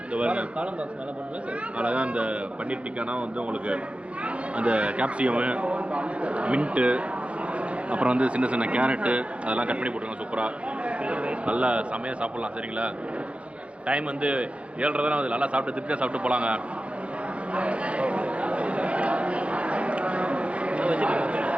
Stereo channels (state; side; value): late; left; 0.061 ms